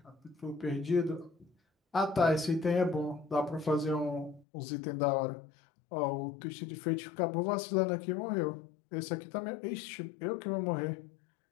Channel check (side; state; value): right; drops out; at 4.5 s